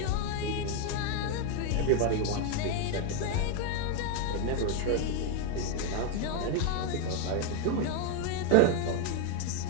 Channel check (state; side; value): different; both; correlation 0.01